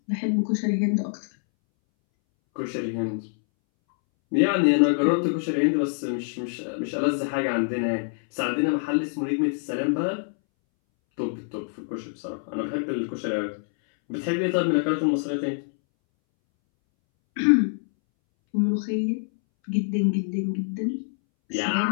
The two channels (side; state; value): right; silent; 61 dB below the other